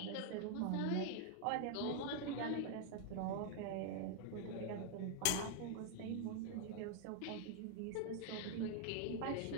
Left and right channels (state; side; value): different; both; correlation 0.00